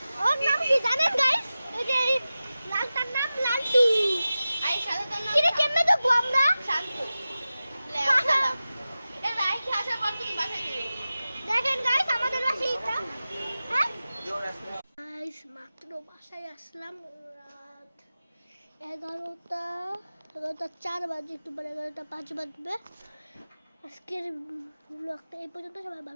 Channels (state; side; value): inverted; both; correlation -0.95